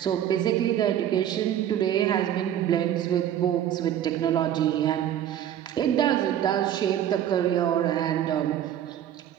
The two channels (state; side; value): quieter; left; 10.9 dB